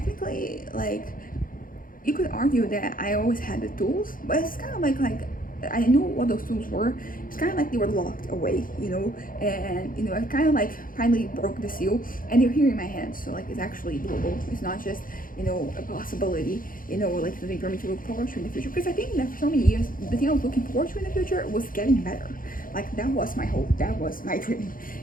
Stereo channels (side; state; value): right; late; 0.40 ms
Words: like, you could argue that I always had the tools, but it's kind of like I knew what those tools were. It's kind of like they were locked away, and I kind of like finally broke the seal, and they're here in my hands. So like it's actually doable. It's not just a possibility, like something for me to look forward to in the future. Because I think that for so many years, the thing I was looking forward to in the future was getting better. Like that was my hope. That was my dream.